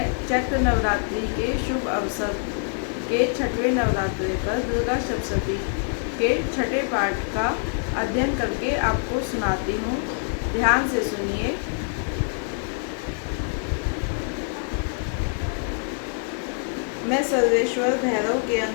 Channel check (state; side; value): silent; right; 55 dB below the other